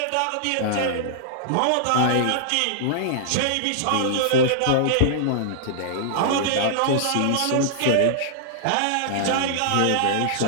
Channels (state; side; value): different; both; correlation -0.01